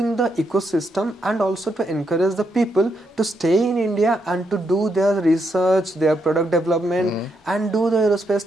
the ecosystem, and also to encourage the people to stay in India and to do their research, their product development, and do the aerospace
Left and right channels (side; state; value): both; normal; correlation 0.79